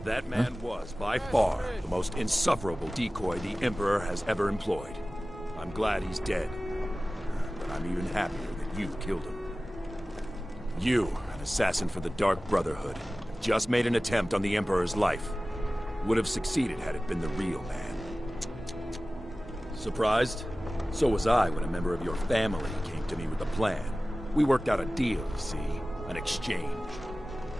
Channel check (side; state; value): both; normal; correlation 0.97